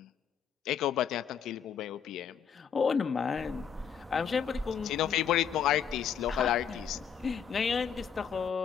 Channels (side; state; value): right; quieter; 7.6 dB